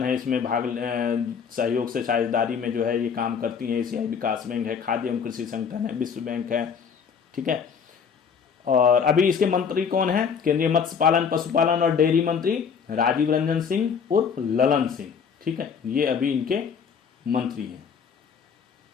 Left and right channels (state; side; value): quieter; right; 6.6 dB